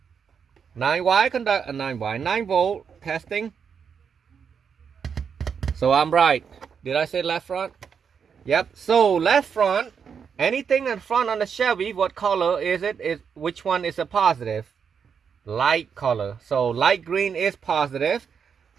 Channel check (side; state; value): left; quieter; 6.8 dB